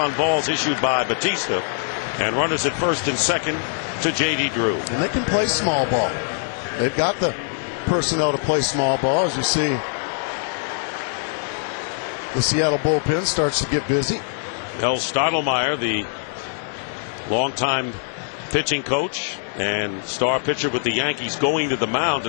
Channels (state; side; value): silent; right; digital silence